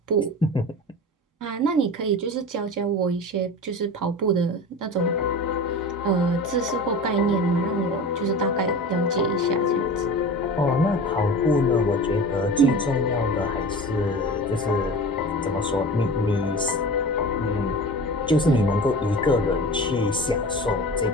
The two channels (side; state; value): both; normal; correlation 0.34